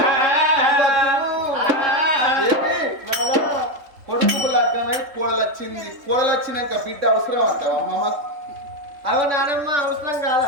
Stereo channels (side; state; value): left; late; 3.6 ms